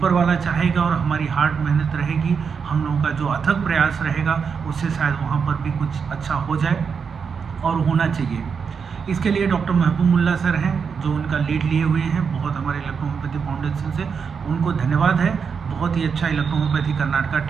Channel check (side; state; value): left; quieter; 6.1 dB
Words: वाला चाहेगा और हमारी हार्ड मेहनत रहेगी, हम लोगों का जो अथक प्रयास रहेगा, उससे शायद वहाँ पर भी कुछ अच्छा हो जाए और होना चाहिए. इसके लिए डॉक्टर महबूबुल्ला सर हैं जो उनका लीड लिए हुए हैं, बहुत हमारे इलेक्ट्रो होम्योपैथी फाउंडेशन से उनको धन्यवाद है. बहुत ही अच्छा electro homeopathy Karnataka